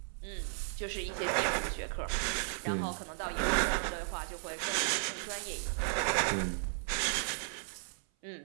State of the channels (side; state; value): left; silent; 54 dB below the other